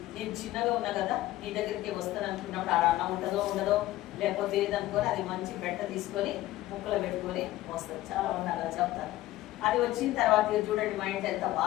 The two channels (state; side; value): quieter; right; 16.0 dB